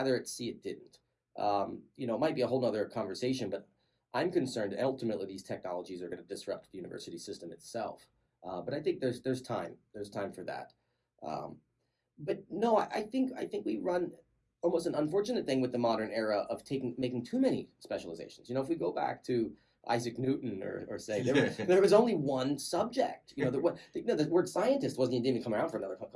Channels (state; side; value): identical; both; correlation 1.00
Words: see it didn't. It might be a whole other conversation, but I'm concerned ultimately these technologies are going to disrupt the university system itself. But I think there's time for that. But no, I think we run almost an unfortunate thing with the modern era of making too many specializations. If we go back to Isaac Newton or say there was only one subject. The word scientist didn't even come around for another